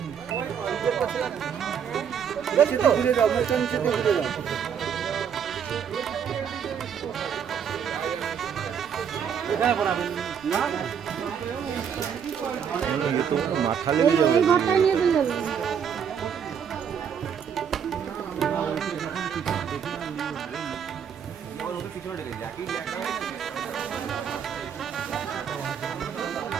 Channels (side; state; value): left; quieter; 7.8 dB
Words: ঘুরে যাও মোটা নিচে ঘুরে যাও এই ঘরটায় নিয়ে চলে যাবে